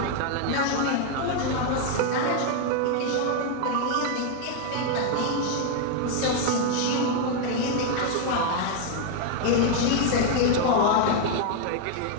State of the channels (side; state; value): both; different; correlation 0.00